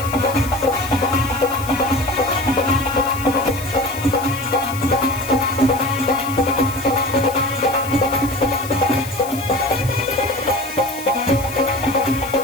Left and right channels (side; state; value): left; noise; hiss, 13 dB below the sound